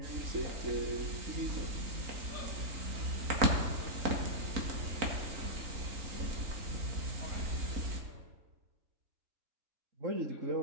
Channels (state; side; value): late; left; 3.9 ms